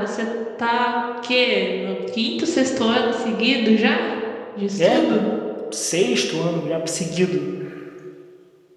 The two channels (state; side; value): identical; both; correlation 1.00